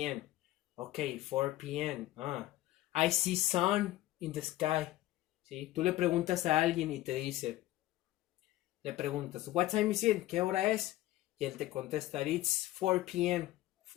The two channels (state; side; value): quieter; right; 15.8 dB